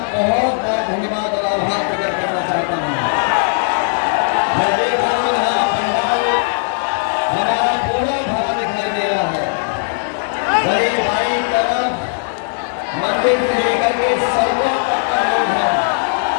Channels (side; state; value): right; silent; 57 dB below the other